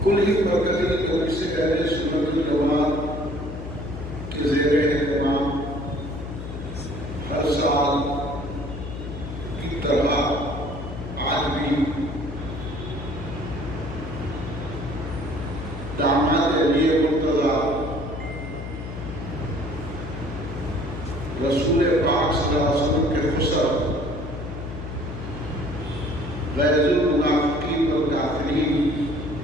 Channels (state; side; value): noise; left; hum, 8 dB below the sound